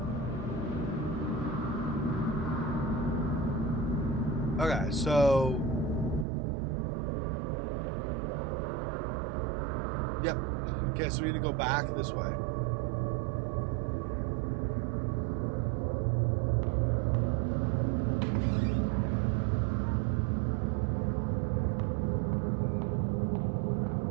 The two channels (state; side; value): drops out; left; at 6.2 s